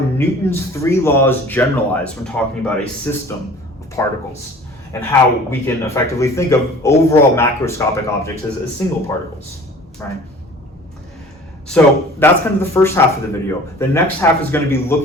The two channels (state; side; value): normal; both; correlation 0.46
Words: three laws generalize when talking about a system of particles, and how we can effectively think of overall macroscopic objects as single particles, right? So that's kind of the first half of the video. The next half is going to be